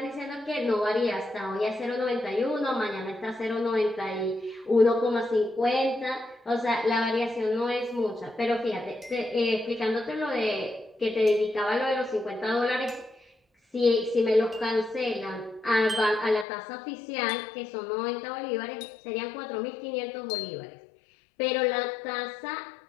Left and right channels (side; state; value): right; drops out; at 16.4 s